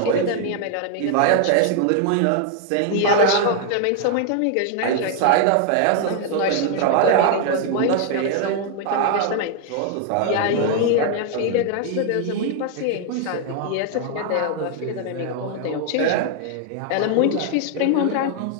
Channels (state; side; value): different; both; correlation 0.00